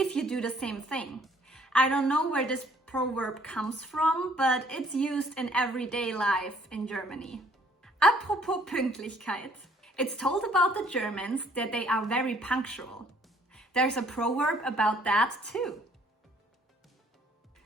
you do the same thing. I don't know where this proverb comes from, but it's used in everyday life in Germany. Apropos Pünktlichkeit. It's told about the Germans that they are very punctual. There's a proverb about that too.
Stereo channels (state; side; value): normal; both; correlation 0.61